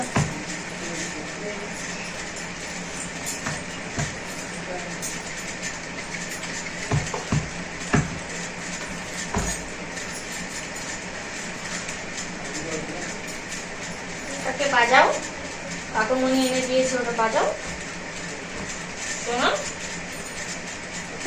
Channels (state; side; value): identical; both; correlation 1.00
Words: ওটাকে বাজাও, কাকুমনি এনে দিয়েছে, ওটা বাজাও। শোনো